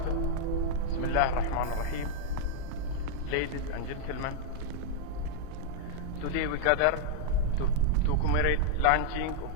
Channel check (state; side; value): different; both; correlation -0.01